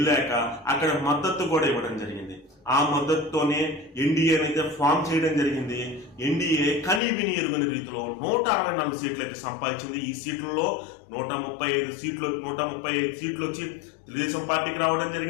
అక్కడ మద్దతు కూడా ఇవ్వడం జరిగింది. ఆ మద్దతుతోనే ఎన్డీఏని అయితే ఫామ్ చేయడం జరిగింది. ఎన్డీఏ కనీ విని ఎరుగని రీతిలో 164 సీట్లు అయితే సంపాదించింది. ఈ సీట్లలో 135 సీట్లు వచ్చి తెలుగుదేశం పార్టీకి రావడం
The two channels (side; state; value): right; drops out; at 7.0 s